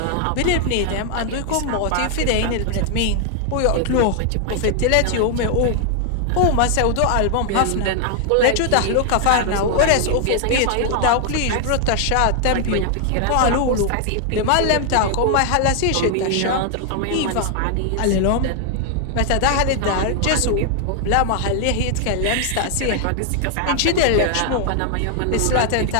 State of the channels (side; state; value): both; different; correlation 0.00